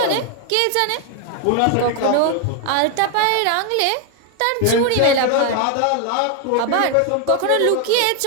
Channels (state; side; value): different; both; correlation 0.01